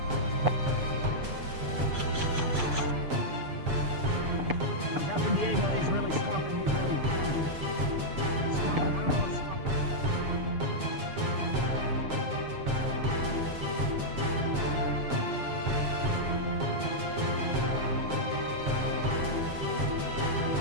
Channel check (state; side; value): late; left; 7.4 ms